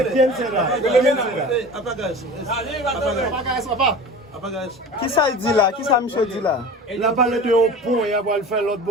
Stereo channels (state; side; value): normal; both; correlation 0.36